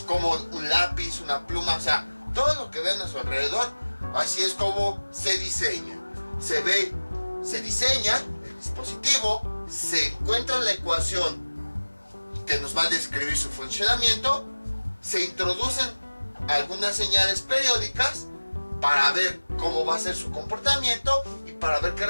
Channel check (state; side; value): inverted; both; correlation -1.00